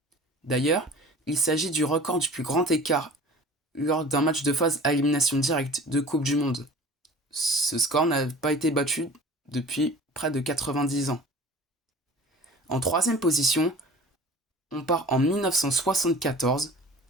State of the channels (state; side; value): normal; both; correlation 0.43